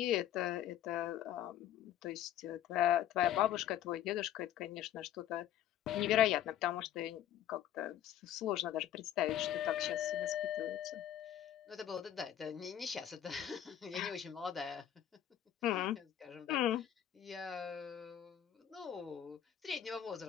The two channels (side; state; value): right; quieter; 11.0 dB